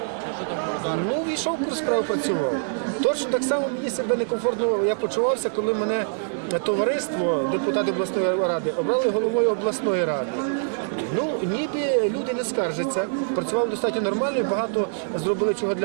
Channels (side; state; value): left; silent; 62 dB below the other